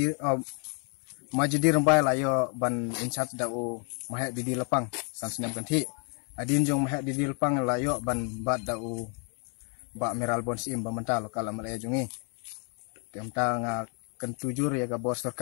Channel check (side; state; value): right; quieter; 38.3 dB